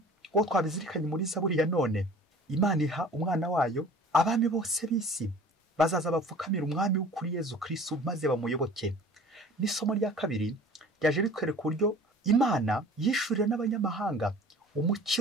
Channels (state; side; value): normal; both; correlation 0.45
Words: Uwo twabizirikanye muri Zaburi ya none. Imana iha umwana wayo abami bose b'isi bazaza bapfukamira umwami w'ukuri Yezu Kristo maze bamuyoboke. N'isomo rya kabiri ryaje ritwereka uburyo Imana yishurira n'abanyamahanga